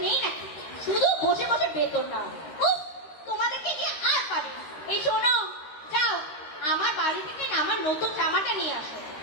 নেই নাকি? শুধু বসে বসে বেতন নাও। উফ, তোমাদেরকে নিয়ে আর পাবে না। এই শোনো, যাও আমার বাড়ি থেকে আমার নতুন জামাটা নিয়ে আসো।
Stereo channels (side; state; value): right; late; 13 ms